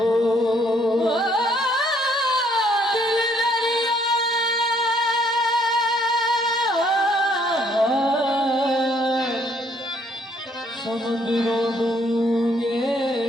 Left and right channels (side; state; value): both; normal; correlation 0.66